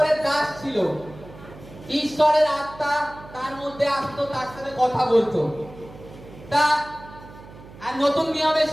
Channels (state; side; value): noise; right; hum, 18 dB below the sound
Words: দাস ছিল। ঈশ্বরের আত্মা তার মধ্যে আসতো, তার সাথে কথা বলতো। তা আর নতুন নিয়মে